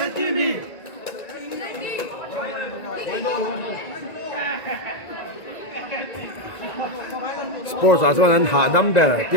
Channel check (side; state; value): right; late; 1.9 ms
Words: Sports 啊，说人下 number，第